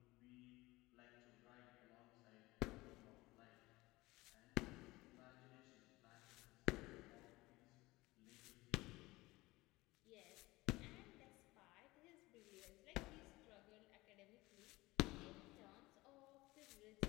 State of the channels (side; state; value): right; quieter; 20.5 dB